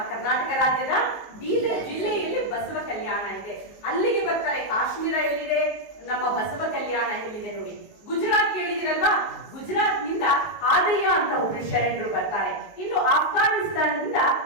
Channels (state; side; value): late; right; 19 ms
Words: ಕರ್ನಾಟಕ ರಾಜ್ಯದ ಬೀದರ್ ಜಿಲ್ಲೆಯಲ್ಲಿ ಬಸವ ಕಲ್ಯಾಣ ಇದೆ. ಅಲ್ಲಿಗೆ ಬರ್ತಾರೆ. ಕಾಶ್ಮೀರ ಎಲ್ಲಿದೆ? ನಮ್ಮ ಬಸವ ಕಲ್ಯಾಣ ಎಲ್ಲಿದೆ ನೋಡಿ. ಗುಜರಾತ್ ಕೇಳಿದಿರಲ್ವಾ? ಗುಜರಾತ್ ನಿಂದ ಆದಯ್ಯ ಅಂತ ಒಬ್ರು ಶರಣರು ಬರ್ತಾರೆ. ಇನ್ನು ಆಫ್ಘಾನಿಸ್ತಾನದಿಂದ